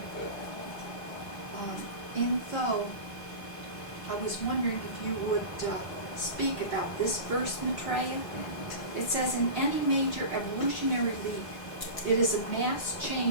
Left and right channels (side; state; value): right; late; 4.7 ms